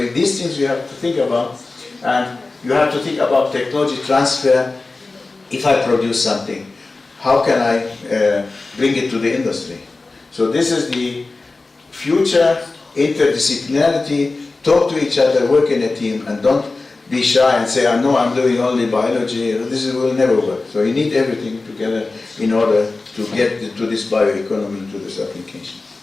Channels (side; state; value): right; quieter; 3.5 dB